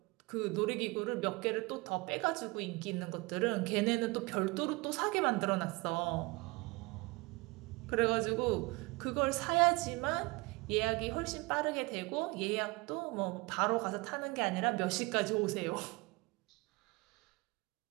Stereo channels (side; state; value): left; quieter; 25.1 dB